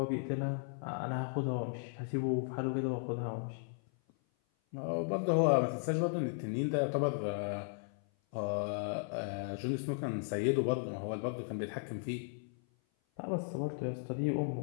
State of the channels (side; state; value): right; silent; 54 dB below the other